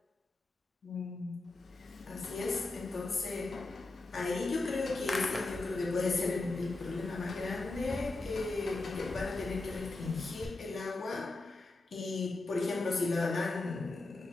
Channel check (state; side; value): quieter; right; 3.2 dB